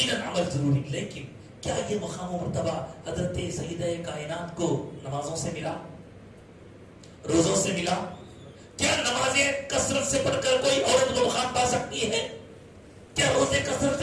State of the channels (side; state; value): both; identical; correlation 1.00